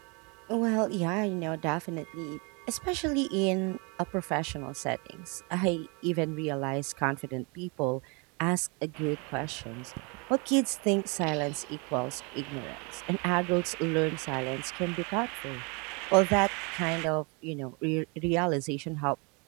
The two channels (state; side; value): quieter; left; 31.3 dB